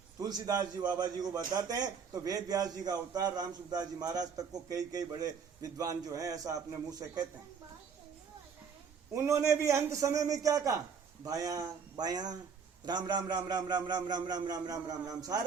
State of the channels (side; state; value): left; quieter; 6.3 dB